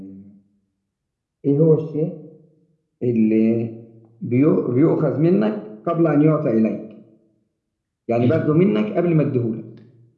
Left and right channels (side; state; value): both; identical; correlation 1.00